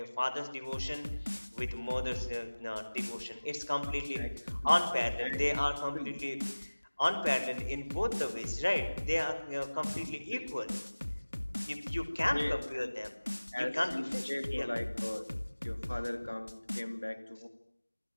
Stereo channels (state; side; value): inverted; both; correlation -1.00